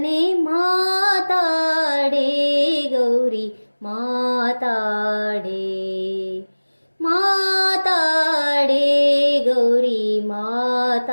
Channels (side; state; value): both; inverted; correlation -1.00